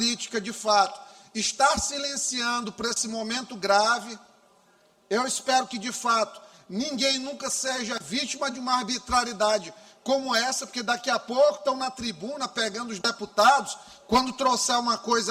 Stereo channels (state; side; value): identical; both; correlation 1.00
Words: de fato, estar silenciando por esse momento grave. Eu espero que, de fato, ninguém nunca seja vítima de uma arbitrariedade como essa, porque daqui a pouco estão na tribuna pegando os deputados, quando trouxer uma